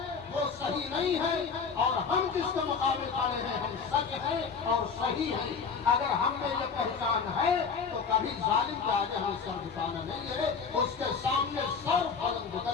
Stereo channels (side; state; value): right; quieter; 5.7 dB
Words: وہ صحیح نہیں ہے، اور ہم جس کے مقابل کھڑے ہیں ہم سچ ہیں اور صحیح ہیں۔ اگر ہم میں یہ پہچان ہے تو کبھی ظالم کے آگے ہمیں سر جھکانا نہیں ہے، اس کے سامنے سر بلند